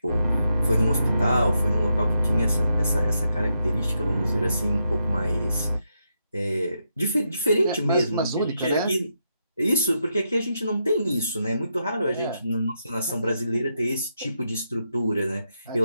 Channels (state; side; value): inverted; both; correlation -0.82